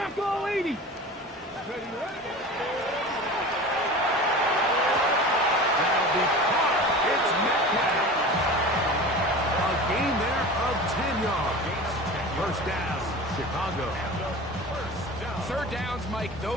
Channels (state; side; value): normal; both; correlation 0.35